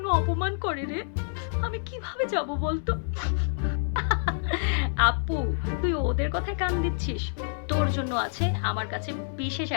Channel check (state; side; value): silent; right; digital silence